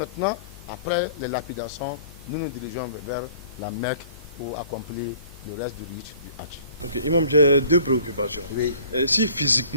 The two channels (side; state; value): both; inverted; correlation -0.51